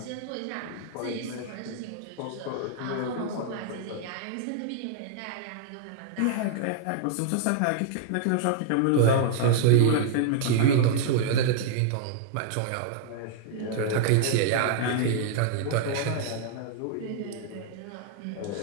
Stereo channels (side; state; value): both; different; correlation -0.01